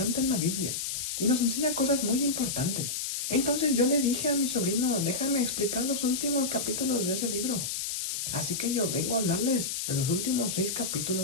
en la Biblia y nos enseña cosas muy importantes. Entonces yo le dije a mi sobrino, déjame explicar los últimos capítulos de ese libro. Así que yo vengo a hablarles de los últimos 6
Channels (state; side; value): noise; left; hiss, 3 dB below the sound